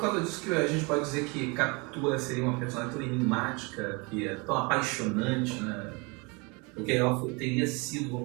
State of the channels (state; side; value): quieter; left; 29.0 dB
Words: causa disso que a gente pode dizer que Capitu seria uma personagem tão enigmática, que é tão apaixonante, né? Porque ela teria sido,